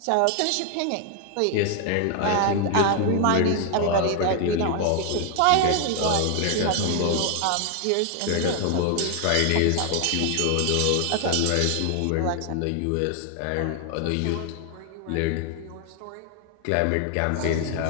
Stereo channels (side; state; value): both; different; correlation 0.00